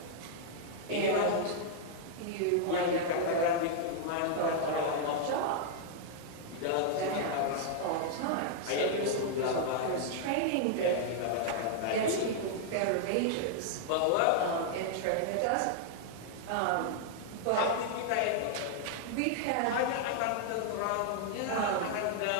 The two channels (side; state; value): both; different; correlation -0.01